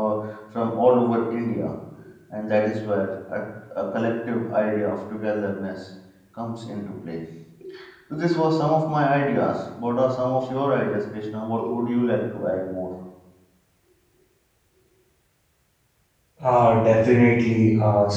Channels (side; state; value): both; identical; correlation 1.00